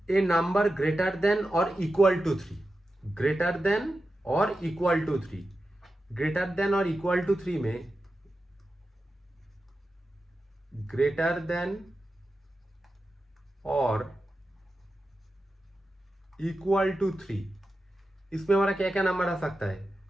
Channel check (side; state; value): both; normal; correlation 0.91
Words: ए नंबर ग्रेटर देन और इक्वल टू 3। ग्रेटर देन और इक्वल टू 3, ग्रेटर देन और इक्वल टू 3 में, ग्रेटर देन और इक्वल टू 3। इसमें हमारा क्या क्या नंबर आ सकता है?